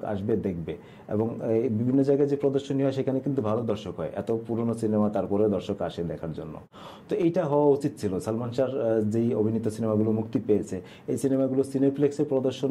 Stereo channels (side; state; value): both; identical; correlation 1.00